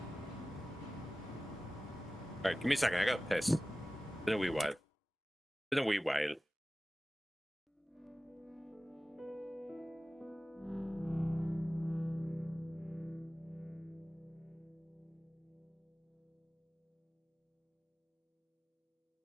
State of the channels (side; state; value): both; normal; correlation 0.96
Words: Alright, give me a second. I got piss. Been a wee while. Been a wee while.